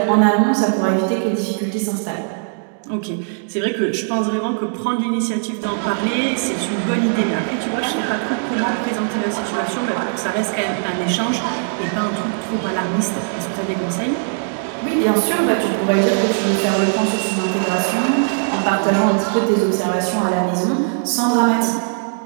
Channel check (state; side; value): silent; left; digital silence